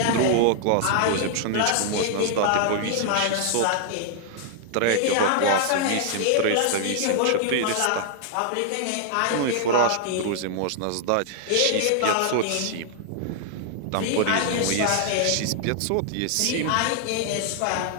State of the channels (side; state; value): both; different; correlation 0.00